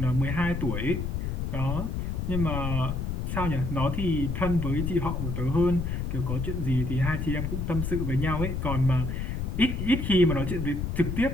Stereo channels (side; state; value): left; noise; rumble, 2 dB below the sound